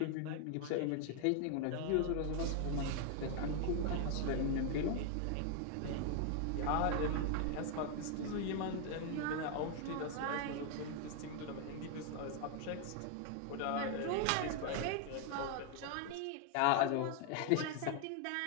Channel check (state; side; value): different; both; correlation 0.00